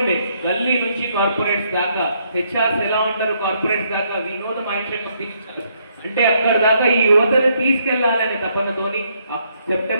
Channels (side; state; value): both; inverted; correlation -0.73